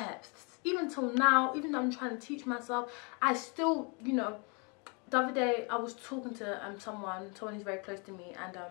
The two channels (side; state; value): right; quieter; 33.3 dB